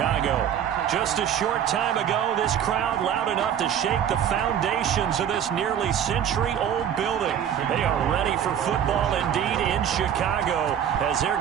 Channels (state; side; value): quieter; left; 9.3 dB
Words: Just a short time ago, this crowd loud enough to shake the foundations of this nearly century-old building. They are ready for football indeed in Chicago as their